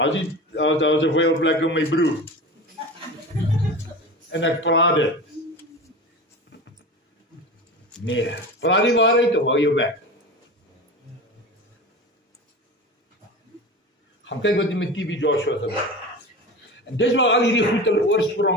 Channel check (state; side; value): normal; both; correlation 0.30